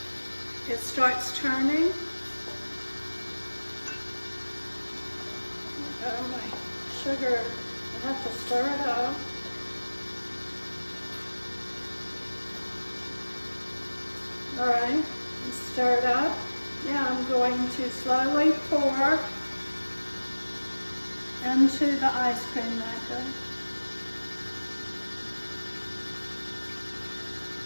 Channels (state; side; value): inverted; both; correlation -1.00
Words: It starts turning. Oh, my sugar, I have to stir it up. All right, stir it up. Now I'm going to slowly pour into the ice cream maker.